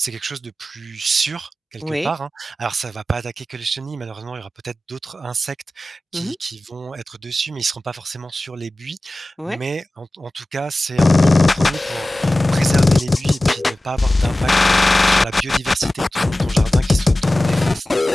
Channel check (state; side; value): normal; both; correlation 0.96